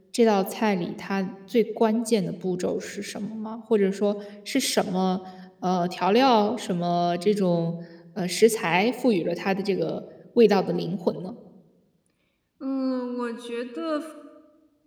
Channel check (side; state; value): both; identical; correlation 1.00